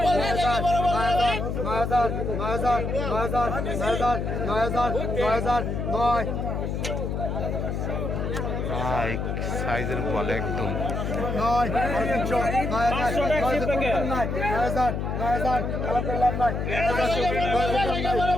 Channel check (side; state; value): left; noise; hum, 2 dB below the sound